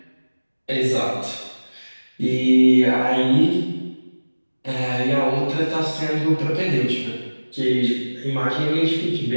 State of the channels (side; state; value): both; inverted; correlation -1.00